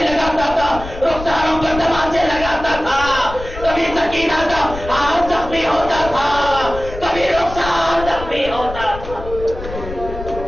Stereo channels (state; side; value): noise; left; rumble, 11 dB below the sound